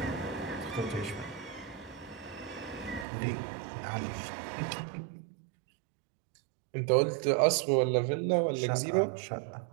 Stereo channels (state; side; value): drops out; left; at 3.1 s